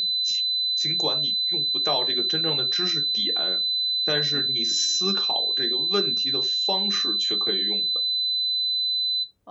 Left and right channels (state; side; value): normal; both; correlation 0.97